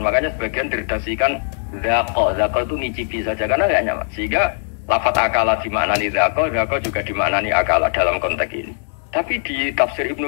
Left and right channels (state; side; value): silent; right; digital silence